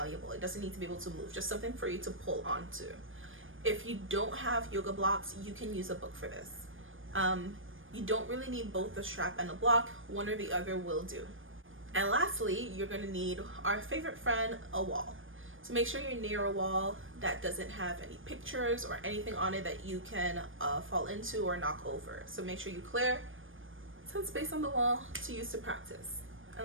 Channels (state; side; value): late; left; 0.58 ms